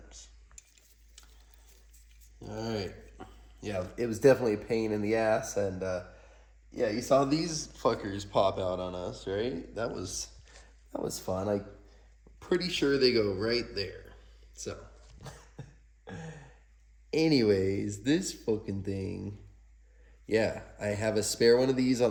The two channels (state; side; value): identical; both; correlation 1.00